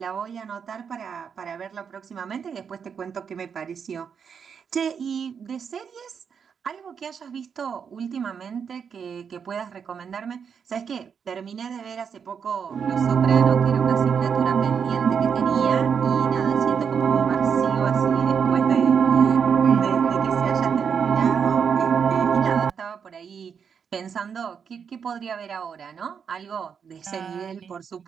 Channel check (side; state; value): left; quieter; 6.8 dB